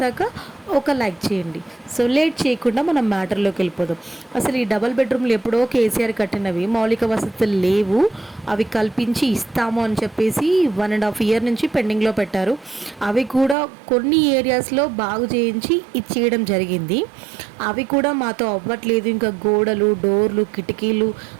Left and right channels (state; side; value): drops out; left; at 13.6 s